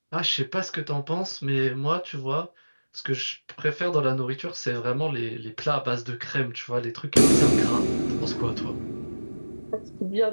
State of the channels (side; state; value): both; inverted; correlation -1.00